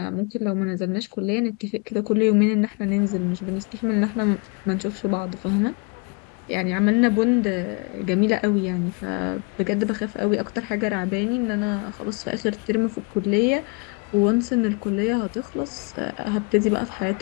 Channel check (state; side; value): quieter; right; 31.6 dB